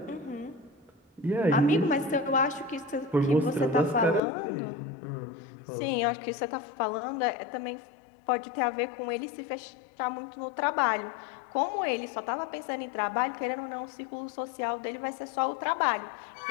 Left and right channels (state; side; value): drops out; right; at 4.2 s